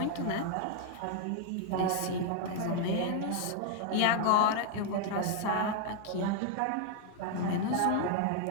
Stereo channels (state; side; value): different; both; correlation 0.00